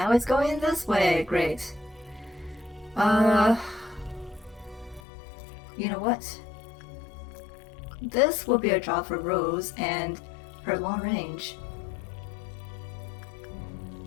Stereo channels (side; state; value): right; drops out; at 5.0 s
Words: it's going this way, great. You know what? This will be a job for Rose and her long range.